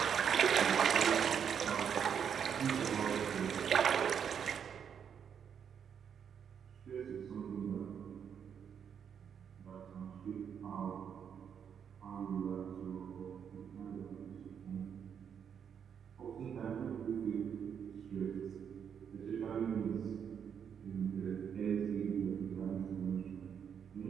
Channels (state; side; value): quieter; left; 7.8 dB